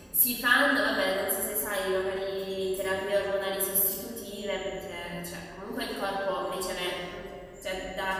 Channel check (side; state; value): both; identical; correlation 1.00